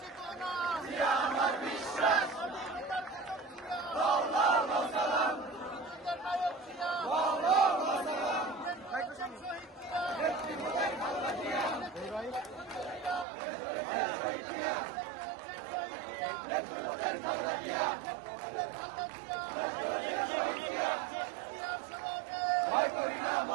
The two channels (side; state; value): left; drops out; at 13.2 s